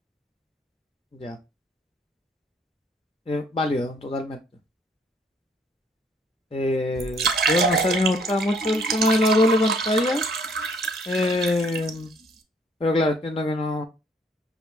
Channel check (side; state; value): both; normal; correlation 0.63